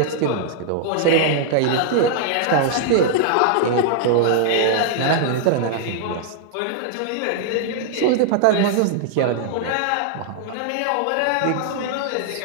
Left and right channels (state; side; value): different; both; correlation -0.01